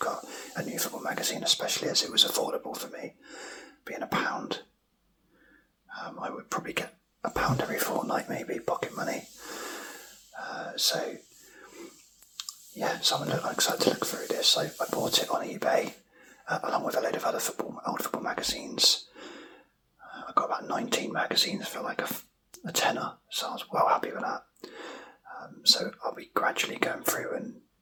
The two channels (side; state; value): both; identical; correlation 1.00